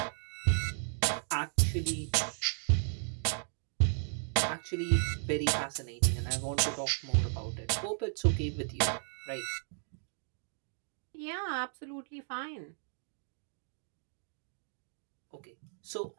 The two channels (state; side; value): silent; left; digital silence